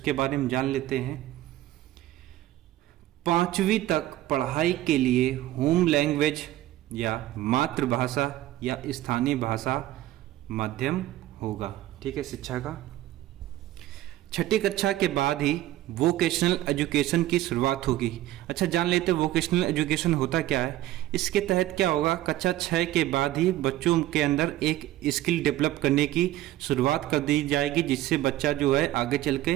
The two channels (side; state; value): left; quieter; 14.9 dB